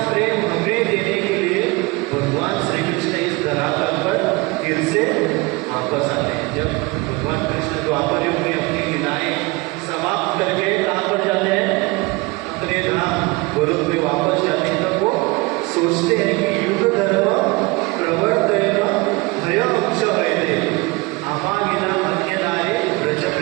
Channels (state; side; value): quieter; left; 24.6 dB